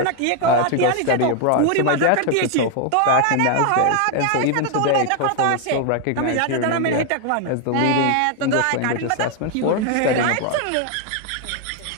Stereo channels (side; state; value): both; different; correlation 0.00